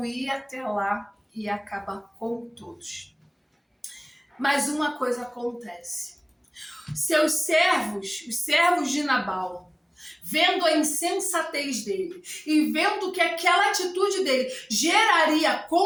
ir até lá e acabar com todos. Mas uma coisa acontece. Seus servos, os servos de Nabal, vendo a insensatez dele e vendo que aquela atitude dele geraria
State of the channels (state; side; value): identical; both; correlation 1.00